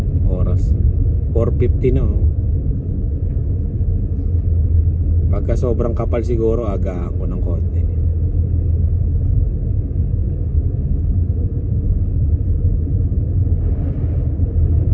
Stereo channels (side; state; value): both; identical; correlation 1.00